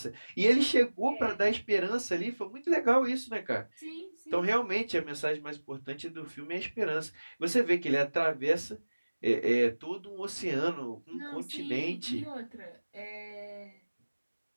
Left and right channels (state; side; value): inverted; both; correlation -1.00